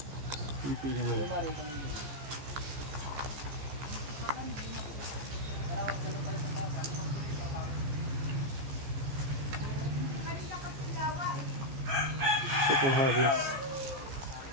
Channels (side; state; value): left; late; 15 ms